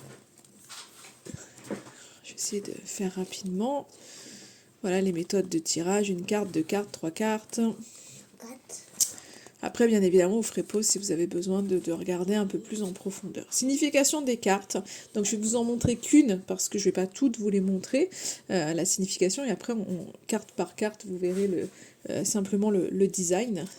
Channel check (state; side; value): identical; both; correlation 1.00